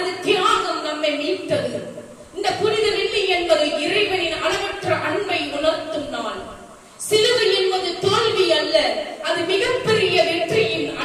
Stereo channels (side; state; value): both; identical; correlation 1.00